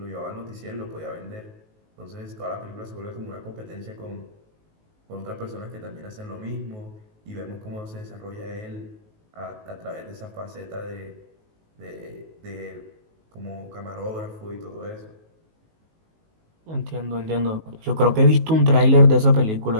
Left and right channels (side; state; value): left; late; 19 ms